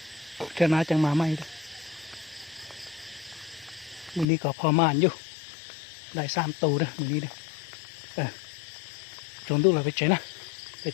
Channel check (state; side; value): drops out; right; at 4.2 s